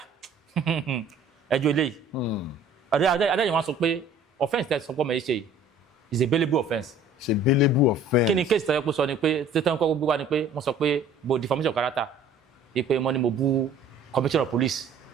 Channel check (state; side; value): quieter; left; 3.4 dB